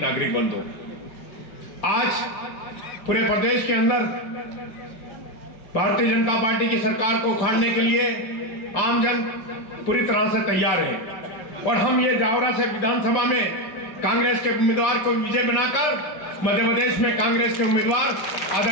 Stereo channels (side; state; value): right; late; 5.8 ms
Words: नागरिक बंधु, आज पूरे प्रदेश के अंदर भारतीय जनता पार्टी की सरकार को उखाड़ने के लिए आमजन पूरी तरह से तैयार है और हम ये जावरा से विधानसभा में कांग्रेस के उम्मीदवार को विजय बनाकर मध्य प्रदेश में कांग्रेस के उम्मीदवार